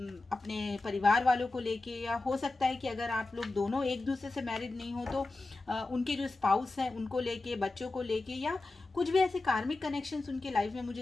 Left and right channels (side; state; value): right; quieter; 3.2 dB